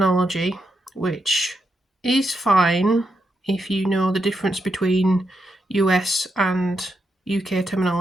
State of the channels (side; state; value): both; normal; correlation 0.83